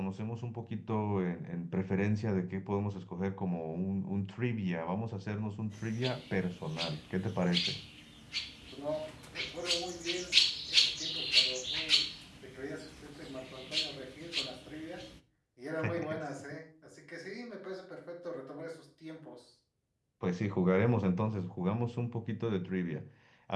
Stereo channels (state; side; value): identical; both; correlation 1.00